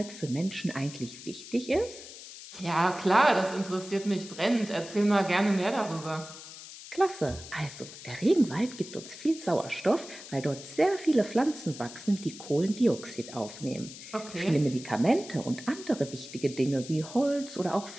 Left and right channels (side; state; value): left; noise; hiss, 14 dB below the sound